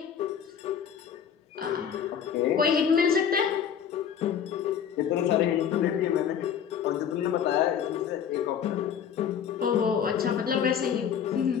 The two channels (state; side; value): quieter; right; 8.2 dB